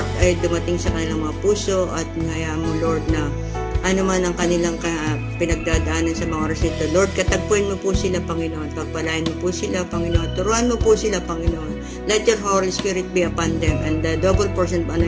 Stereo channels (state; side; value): identical; both; correlation 1.00